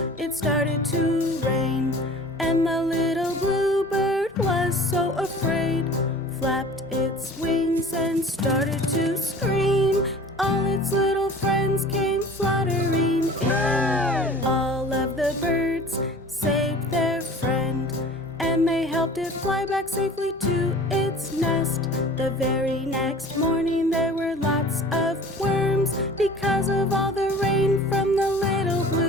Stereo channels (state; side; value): normal; both; correlation 0.43